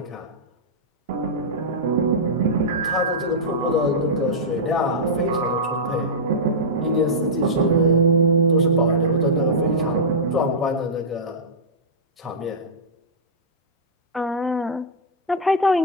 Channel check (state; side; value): normal; both; correlation -0.11